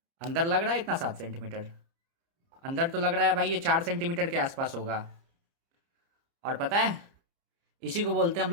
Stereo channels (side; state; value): left; late; 30 ms